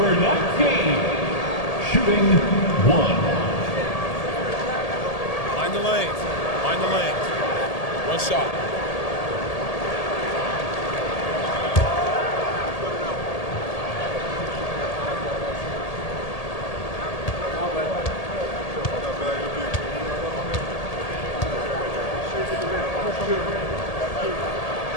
19, shooting 1. Mind the lanes. Mind the lanes. One shot.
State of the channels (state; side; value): late; right; 1.8 ms